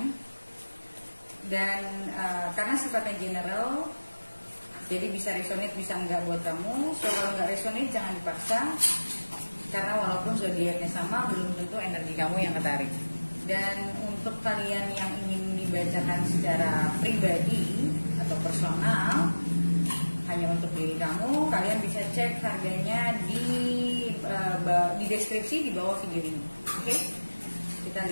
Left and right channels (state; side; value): inverted; both; correlation -1.00